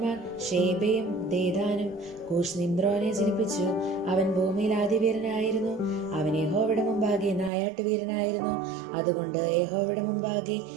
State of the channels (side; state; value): left; drops out; at 7.5 s